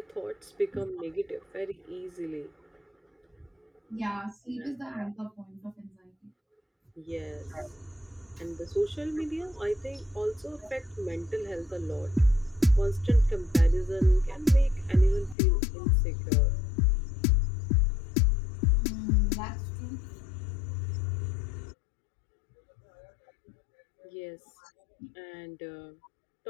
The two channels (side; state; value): right; drops out; at 15.4 s